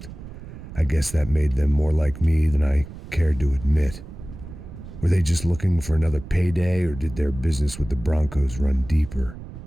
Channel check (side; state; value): right; noise; rumble, 13 dB below the sound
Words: I guess that made them more like me than I cared to admit. Were they just looking for another payday, or did their business with the Broncos run deeper?